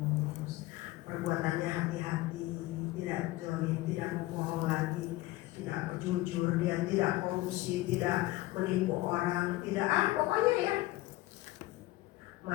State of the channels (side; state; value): right; quieter; 18.3 dB